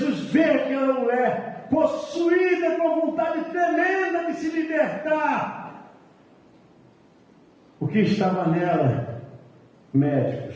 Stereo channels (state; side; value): identical; both; correlation 1.00